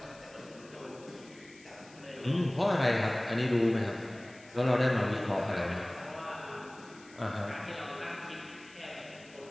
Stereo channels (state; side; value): noise; left; hiss, 23 dB below the sound